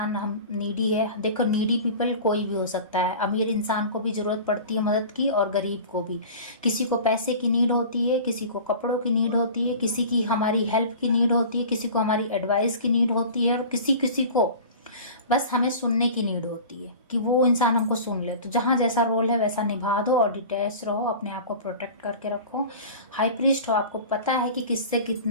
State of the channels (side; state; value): both; inverted; correlation -0.38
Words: हम नीडी है। देखो, नीडी पीपल कोई भी हो सकता है, अमीर इंसान को भी जरूरत पड़ती है मदद की, और गरीब को भी। किसी को पैसे की नीड होती है, किसी को कपड़ों की नीड होती है, किसी की हमारी हेल्प की नीड होती है, किसी को हमारी एडवाइस की नीड होती है, और किसी को बस हमें सुनने की नीड होती है कि वो इंसान हमको सुन ले। तो जहाँ जैसा रोल है वैसा निभा दो और डिटैच रहो, अपने आप को प्रोटेक्ट करके रखो। हाई प्रीस्ट हो, आपको पता है कि किससे